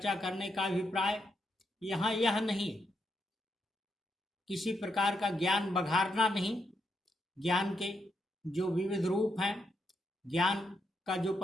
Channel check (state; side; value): normal; both; correlation 0.80